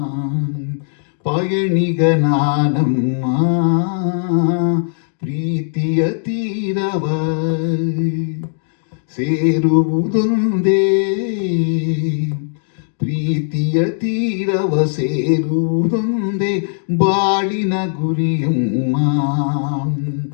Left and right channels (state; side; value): silent; right; digital silence